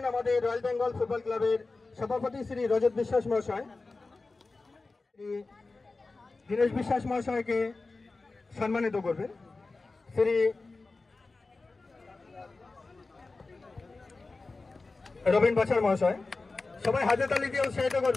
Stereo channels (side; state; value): right; quieter; 3.6 dB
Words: আমাদের রয়্যাল বেঙ্গল ফুটবল ক্লাবের সভাপতি শ্রী রজত বিশ্বাস মহাশয়। শ্রী দীনেশ বিশ্বাস মহাশয়কে সম্মানিত করবেন শ্রী রবীন বাছার মহাশয়। সবাই হাতে তালি দিয়ে উৎসাহিত